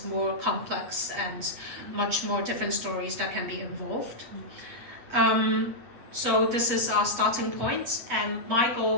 more complex and much more different stories that can be involved. So this is our starting point, and my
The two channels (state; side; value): late; left; 8.2 ms